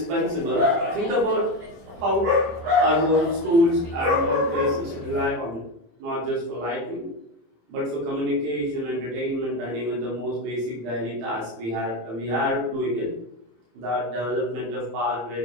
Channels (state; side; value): late; left; 27 ms